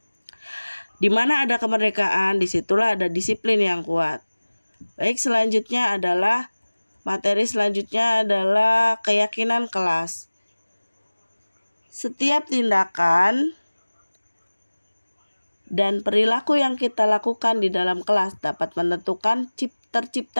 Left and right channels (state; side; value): inverted; both; correlation -1.00